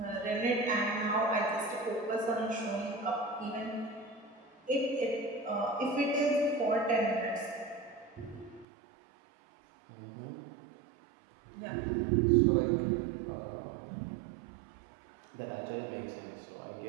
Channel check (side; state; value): left; drops out; at 8.7 s